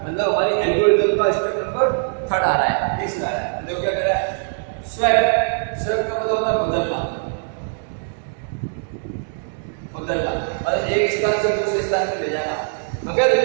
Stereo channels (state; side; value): silent; left; digital silence